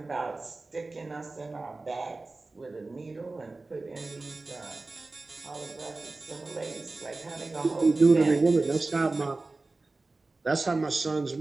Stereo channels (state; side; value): quieter; left; 3.4 dB